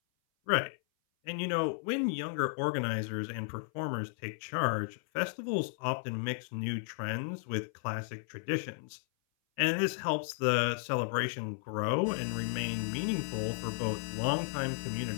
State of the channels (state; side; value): silent; right; 55 dB below the other